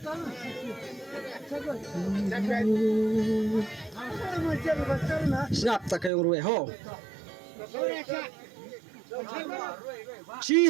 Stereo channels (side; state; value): left; drops out; at 6.1 s